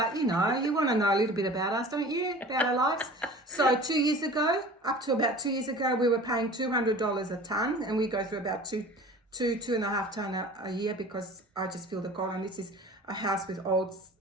you want to know a little bit about us, don't you? About our lives. So 2 years ago, up to about 2 years ago, we were paying $200 a ton, and we go through about two and a half ton a year, because I just feel the cold. And this is a house with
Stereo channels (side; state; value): both; normal; correlation 0.42